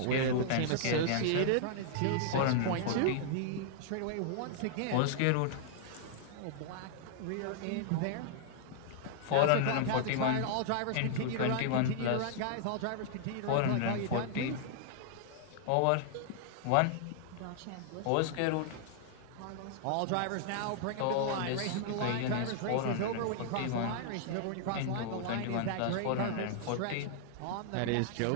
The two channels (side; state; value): both; different; correlation -0.01